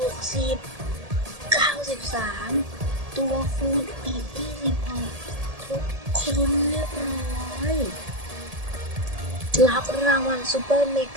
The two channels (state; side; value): late; left; 1.7 ms